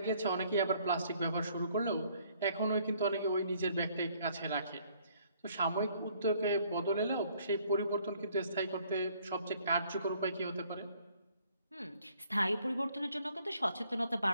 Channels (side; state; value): both; inverted; correlation -0.63